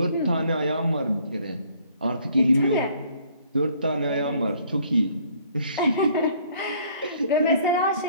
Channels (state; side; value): inverted; both; correlation -0.60